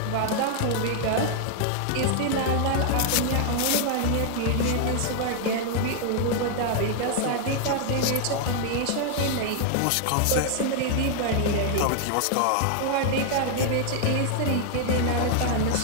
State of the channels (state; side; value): different; both; correlation 0.00